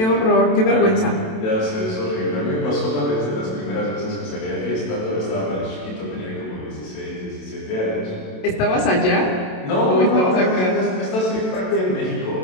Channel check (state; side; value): late; right; 27 ms